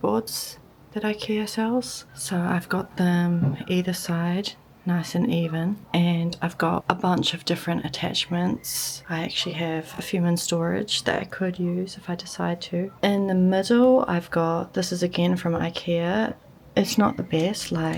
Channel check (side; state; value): both; identical; correlation 1.00